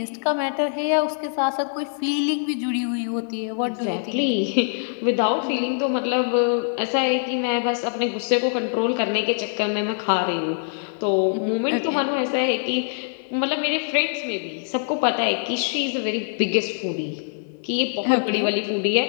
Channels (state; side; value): silent; right; digital silence